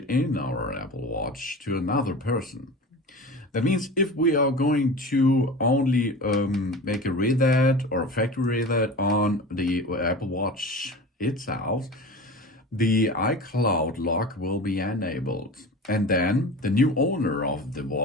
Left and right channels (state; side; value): normal; both; correlation 0.33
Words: in our Apple Watch to another person. That means if we are going to only make a readout or a factory readout on the Apple Watch itself, the iCloud lock will be enabled. And then the new owner of the